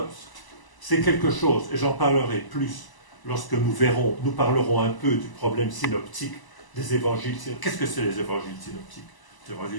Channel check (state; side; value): late; right; 1.0 ms